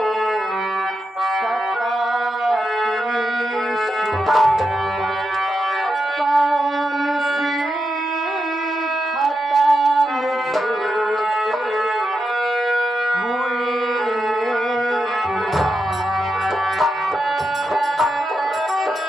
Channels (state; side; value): normal; both; correlation 0.86